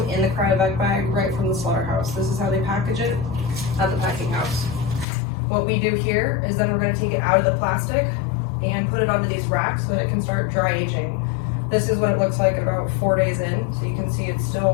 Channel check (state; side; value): drops out; right; at 5.1 s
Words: in the cryovac bag right from the slaughterhouse. This is how they package it at the packing house. What we do here is then we're going to take it out of the plastic and put it onto these racks so that it can start dry aging. This is what it looks like at about 4 days in. So you can see it's